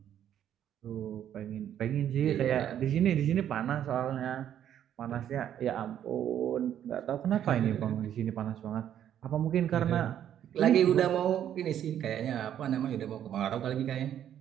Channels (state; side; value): quieter; left; 10.3 dB